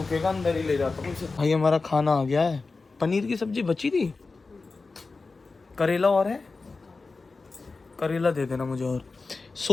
अंदर ही ले जाता हूँ इसे। भाई हमारा खाना आ गया है, पनीर की सब्जी बची थी, करेला और है, करेला दे देना मुझे, और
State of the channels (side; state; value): right; quieter; 4.0 dB